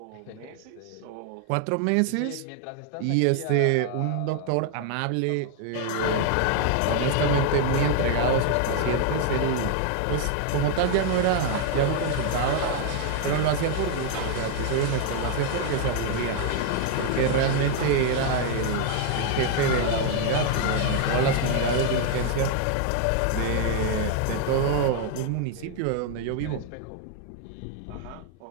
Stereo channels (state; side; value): different; both; correlation 0.00